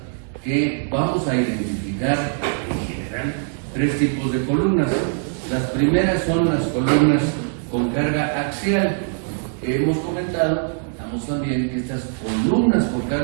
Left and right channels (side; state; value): left; silent; 58 dB below the other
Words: que vamos a identificar en general 3 tipos de columnas. Las primeras son las columnas con carga axial. Hemos comentado también que estas columnas con